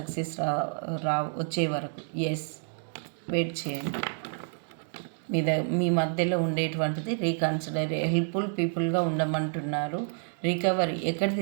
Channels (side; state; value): left; silent; digital silence